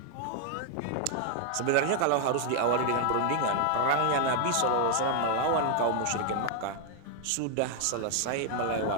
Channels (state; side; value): different; both; correlation 0.00